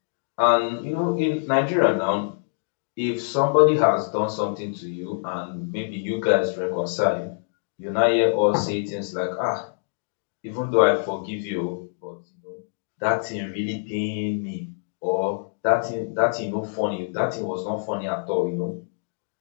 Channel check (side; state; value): right; silent; digital silence